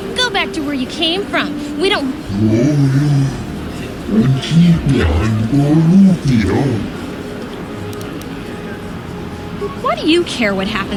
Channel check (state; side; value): identical; both; correlation 1.00